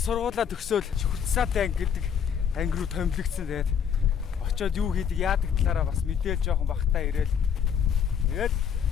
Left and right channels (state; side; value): quieter; right; 7.9 dB